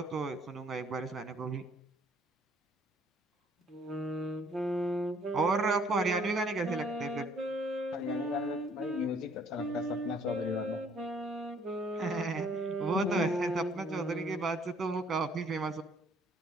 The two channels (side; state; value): both; normal; correlation 0.61